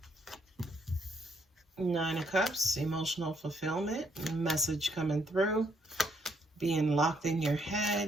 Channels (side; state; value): both; normal; correlation 0.72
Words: Nine of Cups, emotional fulfillment, message coming through. Being locked in your